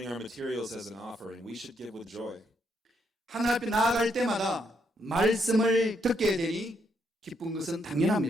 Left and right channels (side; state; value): both; normal; correlation 0.76